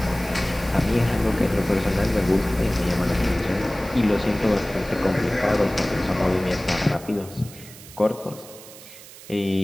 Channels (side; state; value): right; noise; hiss, 18 dB below the sound